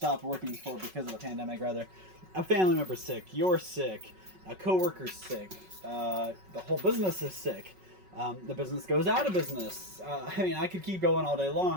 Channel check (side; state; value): left; late; 5.4 ms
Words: working for because of the pandemic. Rather, a family member's sick, you're sick, a coworker's sick, the whole business is sick. The business goes out of business. I could keep going all day